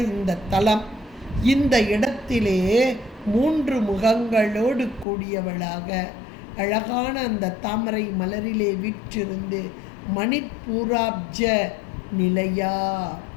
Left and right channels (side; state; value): right; drops out; at 5.1 s